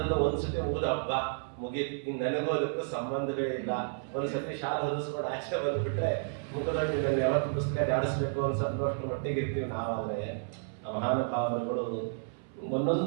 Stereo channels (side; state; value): left; silent; 57 dB below the other